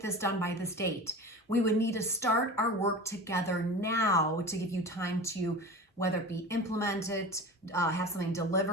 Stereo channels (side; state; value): both; normal; correlation 0.33